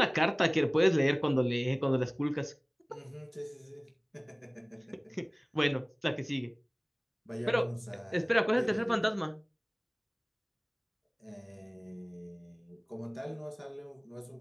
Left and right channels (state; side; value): identical; both; correlation 1.00